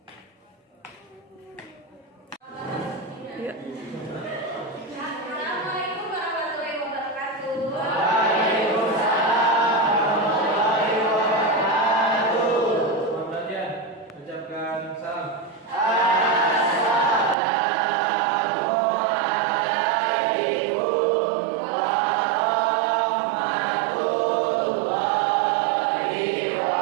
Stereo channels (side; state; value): left; drops out; at 17.4 s